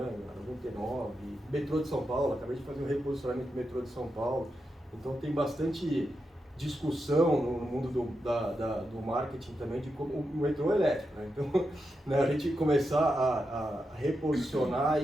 99, metrô de São Paulo. Acabei de fazer um reposicionamento do metrô de São Paulo. Então tem bastante discussão no mundo do marketing também de como o metrô é elétrico, né? Então, né, a gente começar a reposicionar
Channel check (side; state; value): both; normal; correlation 0.87